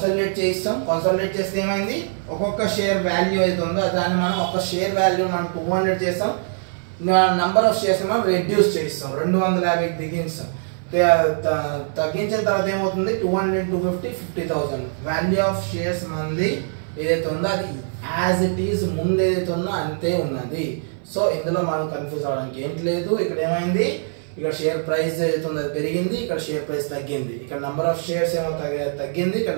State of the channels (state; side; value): silent; left; 57 dB below the other